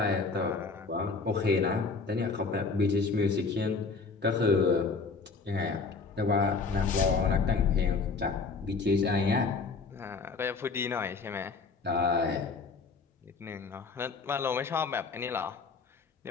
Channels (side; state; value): right; quieter; 4.5 dB